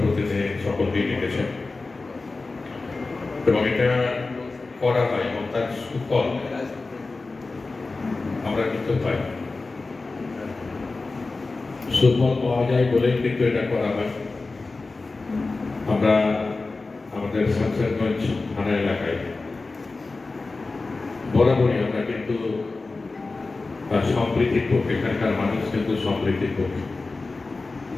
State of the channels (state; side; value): quieter; right; 3.6 dB